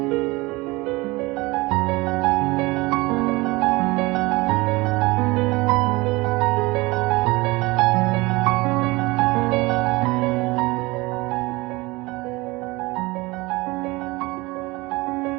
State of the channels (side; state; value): left; quieter; 22.6 dB